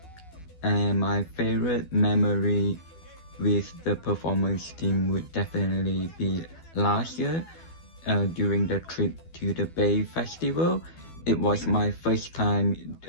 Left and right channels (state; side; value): late; right; 12 ms